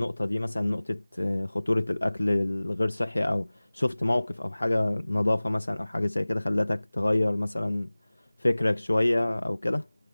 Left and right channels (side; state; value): both; inverted; correlation -0.99